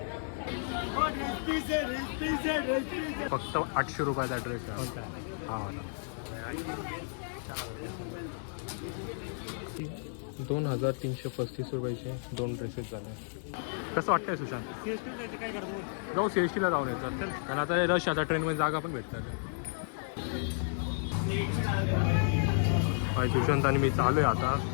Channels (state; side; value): silent; right; 56 dB below the other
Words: फक्त 800 रुपयाचा ड्रेस आहे हा वाला. 2335 रुपयाचे 2 ड्रेसेस झाले. कसं वाटतंय सुशांत? जाऊ CST ला जाऊन येतात कारण आता रश आता ट्रेनमध्ये जागा पण भेटतात. सुशांत आणि मी चालू आहे आता.